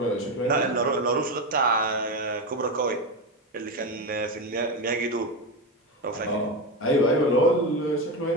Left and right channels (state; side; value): normal; both; correlation 0.16